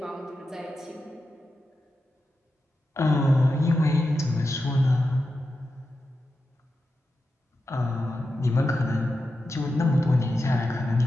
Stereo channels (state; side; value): normal; both; correlation 0.90